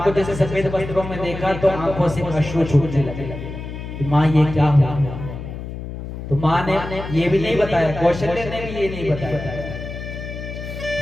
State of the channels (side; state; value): left; noise; hum, 9 dB below the sound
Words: जैसे सफेद वस्त्रों में देखा तो आंखों से अश्रु छूटने लगे। माँ ये क्या हुआ? तो माँ ने ये भी नहीं बताया, कौशल्य ने भी ये नहीं बताया